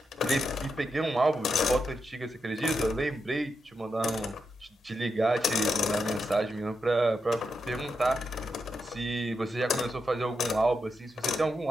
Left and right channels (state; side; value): normal; both; correlation 0.85